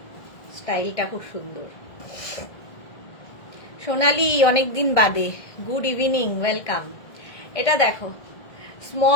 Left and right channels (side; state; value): right; late; 1.8 ms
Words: স্টাইলটা খুব সুন্দর। সোনালি অনেকদিন বাদে, গুড ইভিনিং, ওয়েলকাম। এটা দেখো,